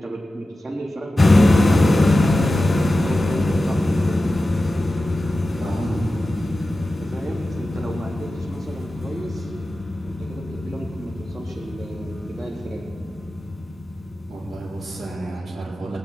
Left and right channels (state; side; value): normal; both; correlation 0.94